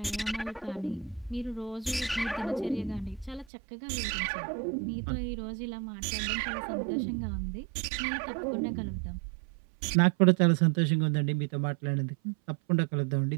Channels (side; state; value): left; drops out; at 3.5 s